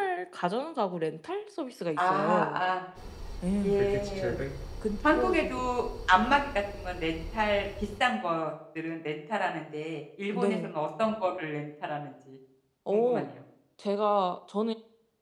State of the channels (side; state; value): both; identical; correlation 1.00